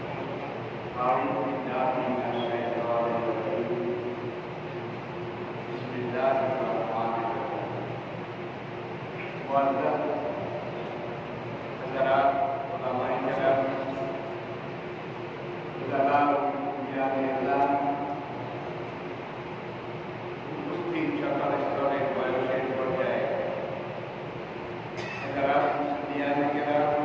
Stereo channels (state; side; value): identical; both; correlation 1.00